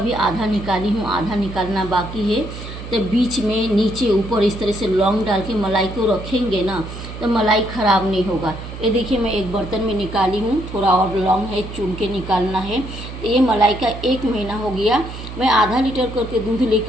आधा निकाली हूँ, आधा निकालना बाकी है। तो बीच में नीचे ऊपर इस तरह से लौंग डाल के मलाई को रखेंगे ना तो मलाई ख़राब नहीं होगा। ये देखिए मैं एक बर्तन में निकाली हूँ, थोड़ा और लौंग है, चुन के निकालना है। तो ये मलाई का 1 महीना हो गया। मैं आधा लीटर करके दूध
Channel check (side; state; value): right; noise; hum, 11 dB below the sound